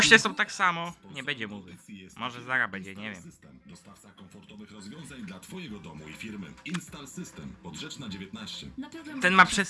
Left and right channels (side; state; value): both; identical; correlation 1.00